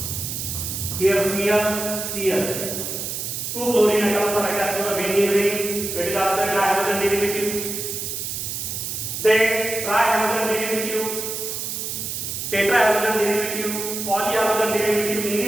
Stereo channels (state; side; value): noise; right; hiss, 4 dB below the sound